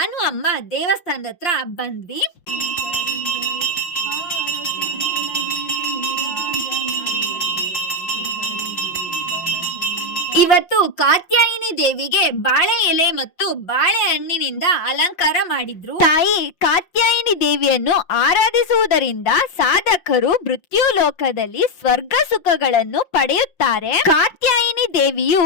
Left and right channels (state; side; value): late; right; 5.7 ms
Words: ಅಮ್ಮ ದೇವಸ್ಥಾನದ ಹತ್ರ ಬಂದ್ವಿ. ಇವತ್ತು ಕಾತ್ಯಾಯಿನಿ ದೇವಿಗೆ ಬಾಳೆ ಎಲೆ ಮತ್ತು ಬಾಳೆಹಣ್ಣಿನಿಂದ ಅಲಂಕಾರ ಮಾಡಿದ್ರು. ತಾಯಿ ಕಾತ್ಯಾಯಿನಿ ದೇವಿಯನ್ನು ಆರಾಧಿಸುವುದರಿಂದ ಸಾಧಕರು ಮೃತ್ಯು ಲೋಕದಲ್ಲಿ ಸ್ವರ್ಗ ಸುಖಗಳನ್ನು ಪಡೆಯುತ್ತಾರೆ. ಕಾತ್ಯಾಯಿನಿ ದೇವಿಯು